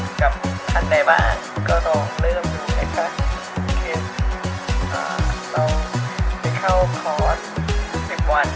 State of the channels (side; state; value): both; identical; correlation 1.00